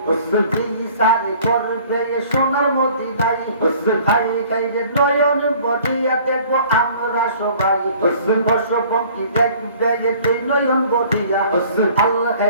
সারে করবে সোনার মতি নাই খাই খাইলে নয়ন বদিয়া দেখবো আমরা সবাই পশু দেখবে তুই নয়ন বদিয়া আল্লাহ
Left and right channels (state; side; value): inverted; both; correlation -0.52